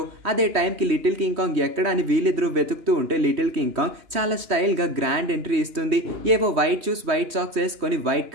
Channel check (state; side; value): late; left; 3.1 ms